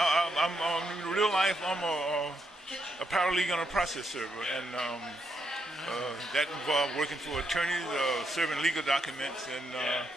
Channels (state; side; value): normal; both; correlation 0.79